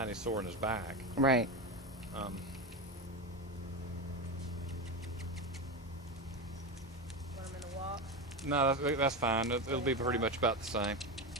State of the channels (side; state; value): both; normal; correlation 0.17